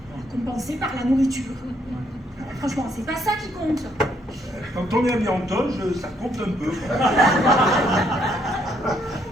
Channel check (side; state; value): both; normal; correlation 0.71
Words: compensée par la nourriture. Franchement, c'est pas ça qui compte. Quand on est habillé en toge, ça compte un peu.